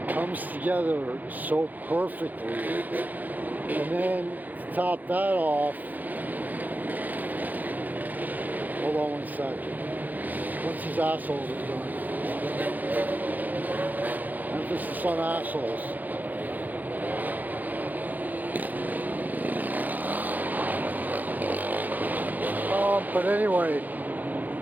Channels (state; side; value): late; left; 0.083 ms